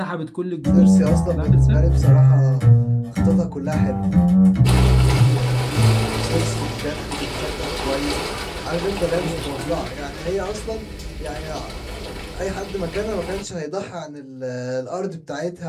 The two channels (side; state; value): both; identical; correlation 1.00